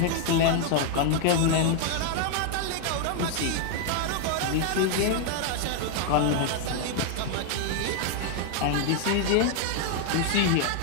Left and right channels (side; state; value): both; different; correlation 0.00